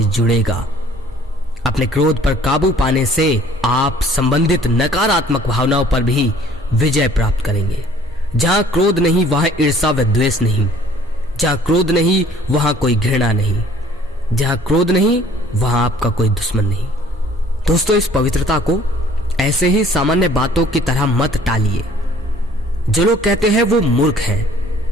जुड़ेगा। अपने क्रोध पर काबू पाने से आप संबंधित नकारात्मक भावनाओं पर भी विजय प्राप्त करेंगे। जहां क्रोध नहीं वहां ईर्ष्या व द्वेष नहीं। जहां क्रोध नहीं वहां कोई घृणा नहीं। जहां क्रोध नहीं वहां आपका कोई दुश्मन नहीं। दोस्तों, इस पवित्रता को ऐसे ही सामान्य बातों की तरह मत टालिए। जो लोग कहते हैं वो मूर्ख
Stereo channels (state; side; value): normal; both; correlation 0.55